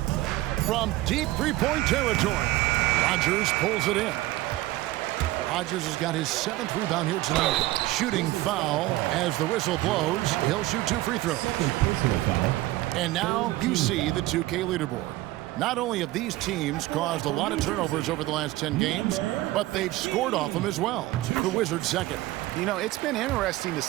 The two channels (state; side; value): quieter; left; 17.4 dB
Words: From deep three-point territory, Rogers pulls it in. Rogers has got his 7th rebound here tonight. Shooting foul as the whistle blows. He'll shoot 2 free throws. And now you see the 2K leaderboard. Not only have these teams caused a lot of turnovers over the last 10 games, but they've scored off them as well. The Wizards second. You know, it's been interesting to